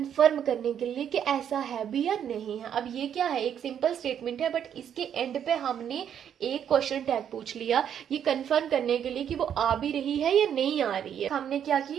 करने के लिए कि ऐसा है भी या नहीं है। अब ये क्या है, एक सिंपल स्टेटमेंट है बट इसके एंड पे हमने एक क्वेश्चन टैग पूछ लिया, ये कंफर्म करने के लिए कि वो आ भी रही है या नहीं आ रही है। हमने क्या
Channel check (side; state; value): left; quieter; 9.0 dB